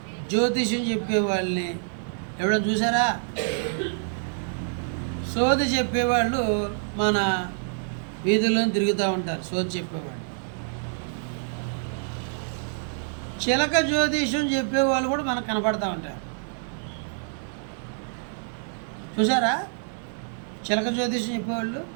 జ్యోతిష్యం చెప్పేవాళ్ళని ఎవరైనా చూసారా? సోది చెప్పేవాళ్ళు మన వీధుల్లో తిరుగుతూ ఉంటారు. సోది చెప్పేవాళ్ళు. చిలక జ్యోతిష్యం చెప్పేవాళ్ళు కూడా మనకు కనపడతా ఉంటారు. చూసారా? చిలక జ్యోతిష్యం చెప్పేవాళ్ళు.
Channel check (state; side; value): silent; left; digital silence